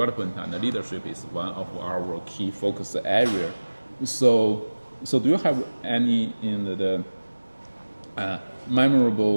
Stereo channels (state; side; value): inverted; both; correlation -1.00